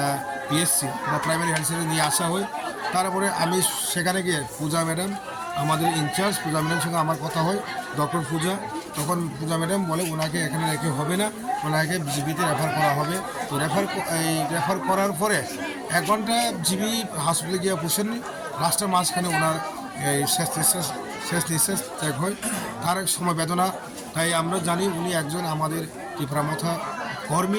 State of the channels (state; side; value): identical; both; correlation 1.00